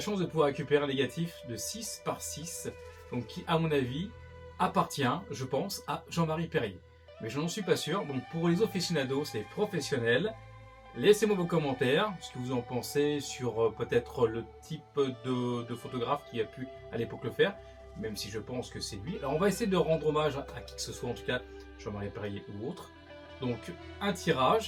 chance de pouvoir récupérer un négatif de 6 par 6, donc qui à mon avis appartient, je pense, à Jean-Marie Perrier. Mais je n'en suis pas sûr, donc pour les aficionados, les professionnels, laissez-moi vos commentaires, ce que vous en pensez sur peut-être le type de photographe qui a pu à l'époque le faire, même si je pense que c'est lui. Alors on va essayer de rendre hommage à qui que ce soit, en tout cas Jean-Marie Perrier ou autre. Donc un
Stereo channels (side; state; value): both; identical; correlation 1.00